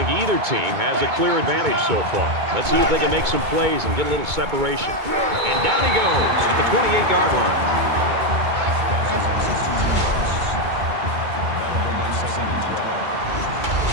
either team has a clear advantage so far. Let's see if they can make some plays and get a little separation. And down he goes at the 28-yard line.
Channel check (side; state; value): left; late; 2.2 ms